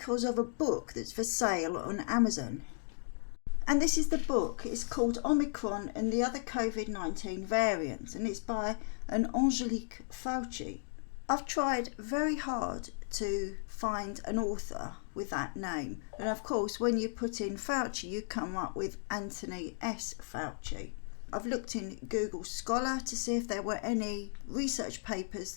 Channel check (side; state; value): right; silent; digital silence